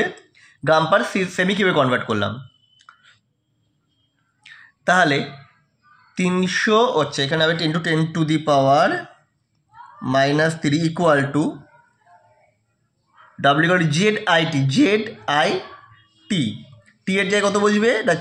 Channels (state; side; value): identical; both; correlation 1.00